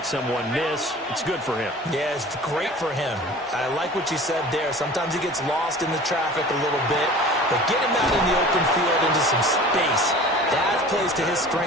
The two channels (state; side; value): normal; both; correlation 0.42